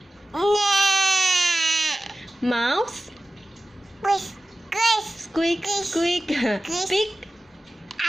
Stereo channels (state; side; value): normal; both; correlation 0.95